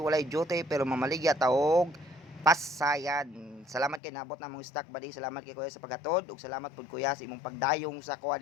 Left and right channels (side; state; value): right; drops out; at 4.0 s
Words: duty pero mamaligya taog pasayan. Salamat kay nabot na mong stock buddy. Salamat kay kuya sa paghatod ug salamat pud kuya sa imong pagdayong sa kuha